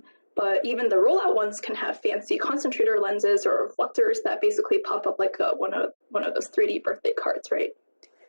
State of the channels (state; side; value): inverted; both; correlation -1.00